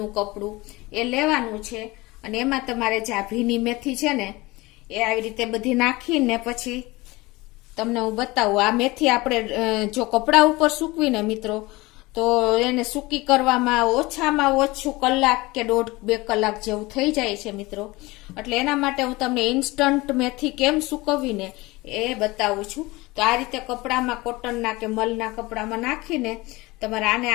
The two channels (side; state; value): right; quieter; 21.7 dB